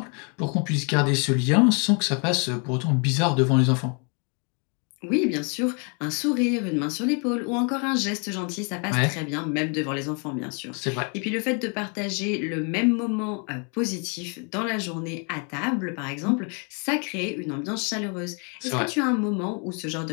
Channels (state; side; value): quieter; right; 36.4 dB